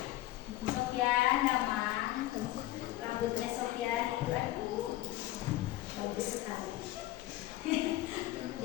Sofyan nama rambutnya Sofyan itu aduh bagus sekali.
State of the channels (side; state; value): right; quieter; 16.3 dB